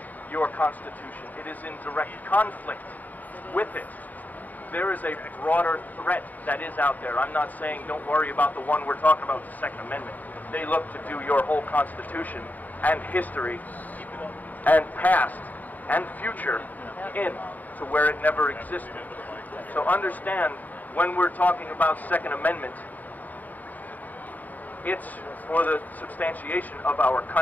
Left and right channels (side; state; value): right; late; 0.082 ms